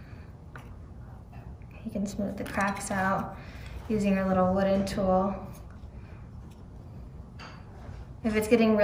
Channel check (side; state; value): both; identical; correlation 1.00